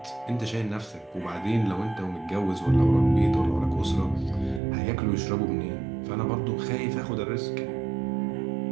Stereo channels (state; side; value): drops out; left; at 4.6 s